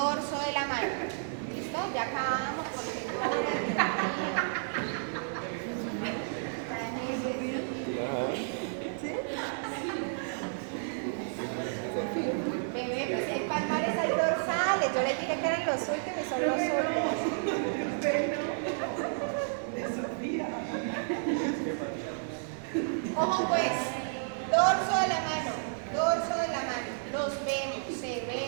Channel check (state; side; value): silent; left; digital silence